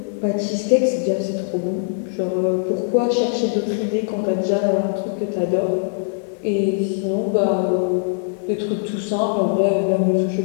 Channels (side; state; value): right; silent; 61 dB below the other